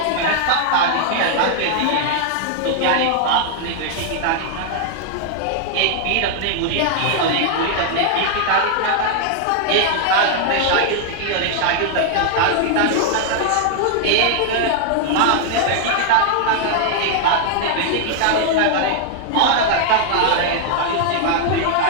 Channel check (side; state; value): both; different; correlation -0.01